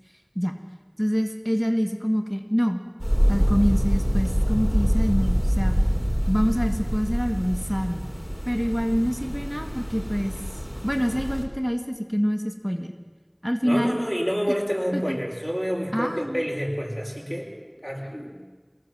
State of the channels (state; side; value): identical; both; correlation 1.00